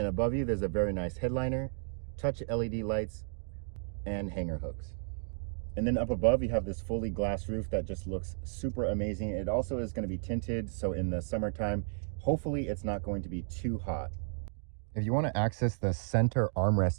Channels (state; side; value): silent; left; digital silence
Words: above you, there's a very nice headliner, touch LED lights, and hanger hooks. And then up above, you have this fully glass roof that just looks super amazing. It also is going to be tinted, so in the summertime, hopefully it's not going to be too hot. If you want to access the center